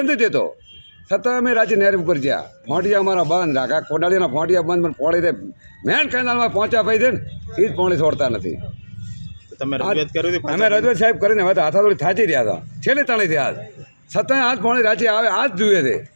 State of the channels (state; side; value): inverted; both; correlation -1.00